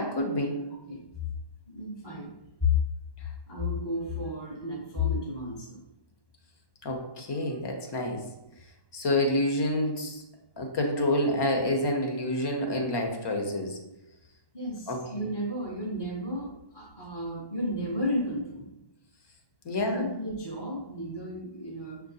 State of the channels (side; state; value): right; late; 1.1 ms